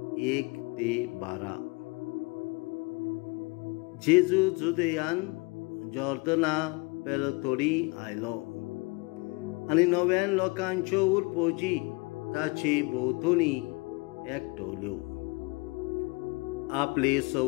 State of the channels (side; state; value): right; quieter; 27.2 dB